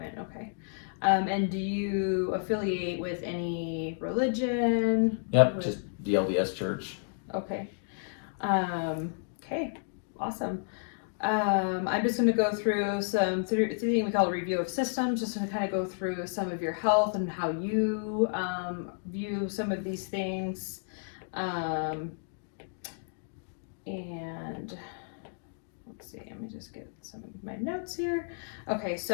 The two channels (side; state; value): right; silent; digital silence